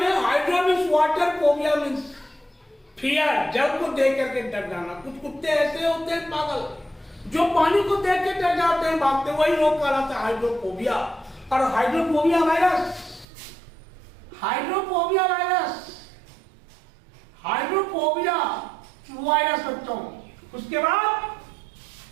Hydro means water, phobia means fear, जल को देख करके डर जाना। कुछ कुत्ते ऐसे होते हैं पागल, जो पानी को देख के डर जाते हैं, भागते, वही रोग कहलाता है हाइड्रोफोबिया। और हाइड्रोफोबिया वायरस बच्चों उसके बाद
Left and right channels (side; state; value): left; drops out; at 13.2 s